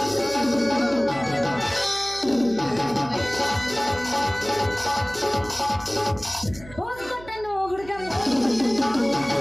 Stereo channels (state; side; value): noise; right; hum, 18 dB below the sound